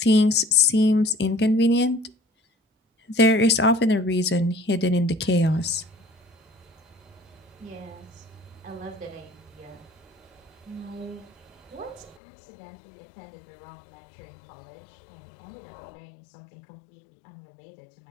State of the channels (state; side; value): drops out; right; at 12.2 s